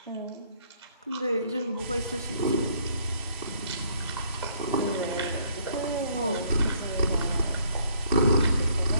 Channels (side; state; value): both; inverted; correlation -0.64